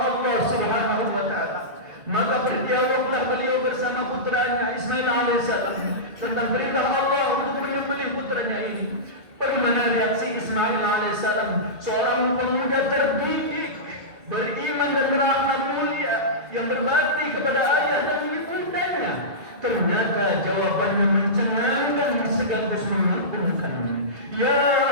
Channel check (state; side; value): late; left; 2.3 ms